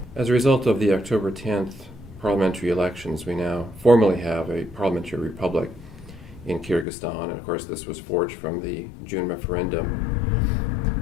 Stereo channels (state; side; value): drops out; right; at 6.9 s